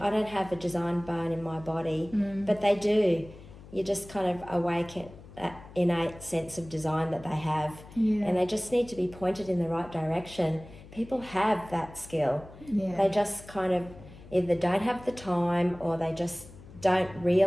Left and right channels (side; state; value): left; noise; hum, 19 dB below the sound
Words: don't have a design bone in my body, but they do. You just kind of awaken that innate sense of design that they have, and they just need to be pointed in the right direction. People have that skill. They just kind of either don't have the time, or they just don't